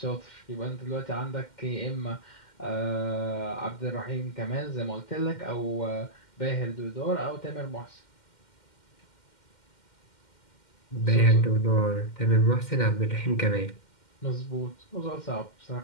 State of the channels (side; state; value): right; late; 2.1 ms